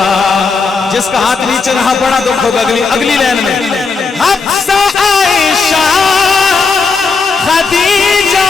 جس کا ہاتھ نیچے رہا بڑا دکھ ہوگا اگلی لائن میں. حفصہ عائشہ خدیجہ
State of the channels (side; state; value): right; quieter; 4.6 dB